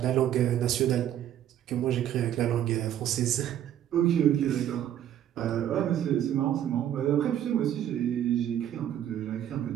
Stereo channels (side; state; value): left; quieter; 10.9 dB